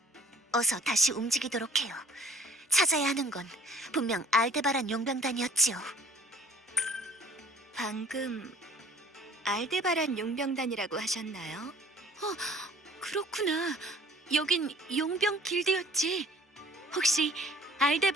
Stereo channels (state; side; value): normal; both; correlation 0.54